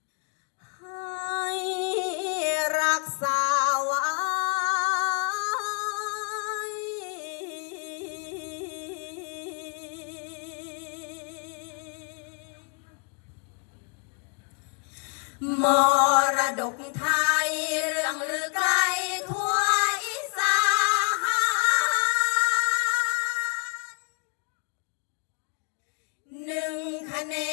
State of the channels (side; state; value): right; quieter; 38.6 dB